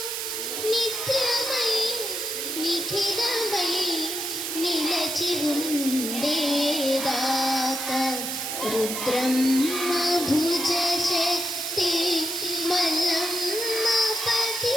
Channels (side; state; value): right; noise; hiss, 3 dB below the sound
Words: నిత్యమై నిఖిలమై నిలచి ఉండేదాకా రుద్రమ్మ భుజ శక్తి మల్లమ్మ